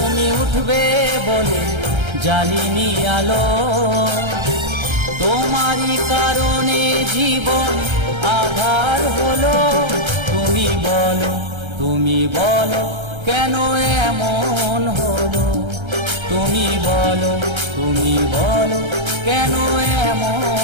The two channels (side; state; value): left; late; 1.3 ms